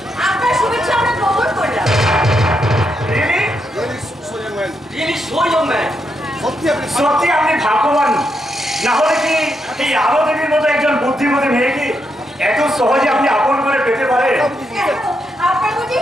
আপনার শুভেচ্ছা আমরা গ্রহণ করলাম। সত্যি আপনি ভাগ্যবান, না হলে কি এই আলো দেবীর মতো একজন বুদ্ধিমতী মেয়েকে এত সহজে আপনি আপন করে পেতে পারেন? আপনার বুঝি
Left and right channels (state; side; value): normal; both; correlation 0.81